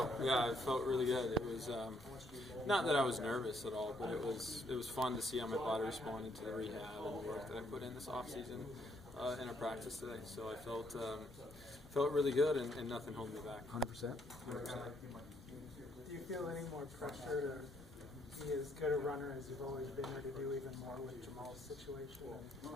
Yeah, it felt really good. It was not that I was nervous at all, but it was fun to see how my body responded to the rehab and the work that I put in this off season in our practice today. So I felt really good, and nothing held me back. 100%. 100%. Do you feel any more pressure to be as good a runner as you've always been, or to do even more with Jamaal's situation?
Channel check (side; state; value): both; normal; correlation 0.70